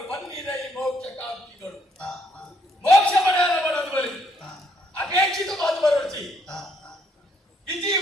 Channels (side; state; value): both; normal; correlation 0.71